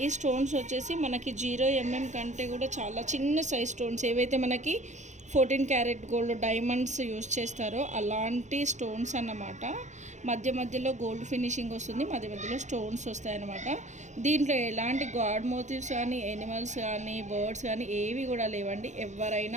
ఈ స్టోన్స్ వచ్చేసి మనకి 0mm కంటే కూడా చాలా చిన్న సైజ్ స్టోన్స్, ఏవైతే మనకి 14 క్యారెట్ గోల్డ్ డైమండ్స్ యూజ్ చేస్తారో అలాంటి స్టోన్స్ అన్నమాట. మధ్య మధ్యలో గోల్డ్ ఫినిషింగ్ వస్తుంది, మధ్య మధ్యలో స్టోన్స్ వస్తాయన్నమాట. దీంట్లో ఎలాంటి గాడ్ మోటివ్స్ కానీ, ఎనిమల్స్ కానీ, బర్డ్స్ కానీ ఏవి కూడా లేవండి.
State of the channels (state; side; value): late; left; 0.34 ms